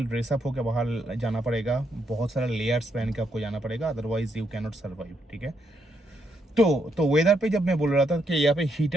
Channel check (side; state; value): both; normal; correlation 0.77